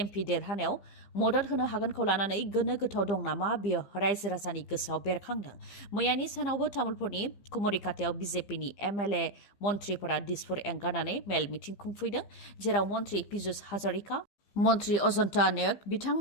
एमपि देरहानायाव मदद होनो हागोनखौ लानानै गोनो गोथाव दं नामा बेयो रायजो राजानि गोसोआव बेरखांदों मैयानि सानावबो तामुलपुरनि कुमरिकाटायाव बिजेपिनि एमएलए मन्त्रिफोरा दिसपुर एंगारनानै मेल मिटिं खुंफैदों जेराव मन्त्रि पीयूष हाजरिका मन्त्रि अजन्ता नायक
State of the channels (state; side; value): late; right; 15 ms